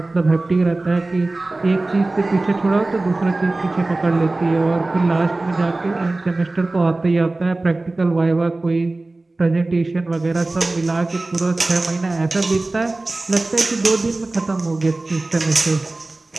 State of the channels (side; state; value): left; quieter; 3.0 dB